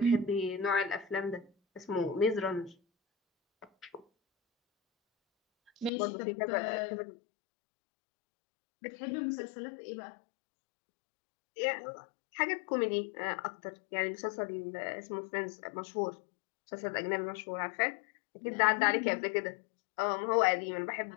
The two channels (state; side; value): drops out; right; at 5.9 s